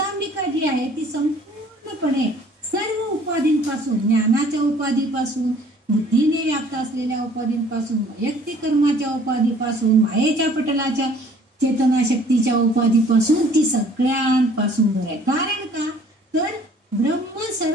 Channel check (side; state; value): both; normal; correlation 0.55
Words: जी आहे ती संपूर्णपणे सर्व उपाधींपासून, ज्ञानाच्या उपाधीपासून, बुद्धीने व्याप्त असलेल्या उपाधींपासून, वैयक्तिक कर्माच्या उपाधीपासून, मायेच्या पटलाच्या चेतनाशक्तीच्या उपाधीपासून, ती सगळ्यांपासून दूर आहे. कारण का तर ब्रह्म